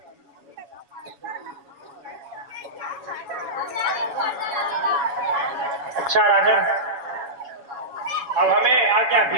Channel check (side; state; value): left; late; 7.2 ms